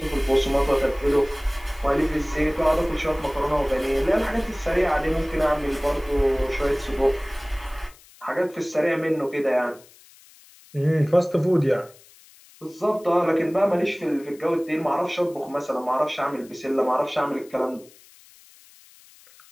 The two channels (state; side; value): noise; left; hiss, 25 dB below the sound